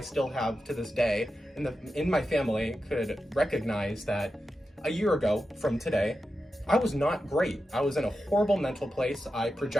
still have to this day in my family, could recognize that a year ago from today, I was not great. I was in a horrible mental place. I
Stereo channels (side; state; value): both; normal; correlation 0.90